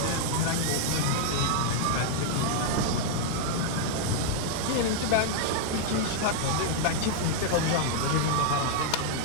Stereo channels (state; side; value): different; both; correlation -0.01